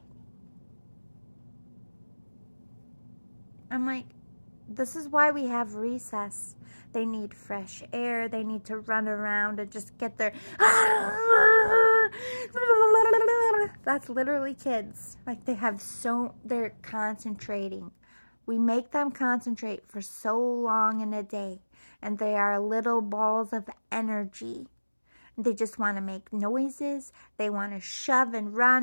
I'm like, this is why we have recess. They need fresh air. They need to run around and just get their... That's literally kids. Like, they're concentrating. We make them concentrate for so long in a day. And they are little balls of energy. They just want to make noises. They want to shove and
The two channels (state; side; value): inverted; both; correlation -1.00